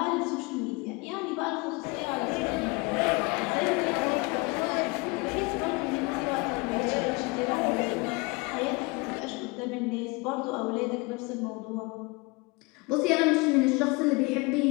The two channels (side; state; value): right; quieter; 26.6 dB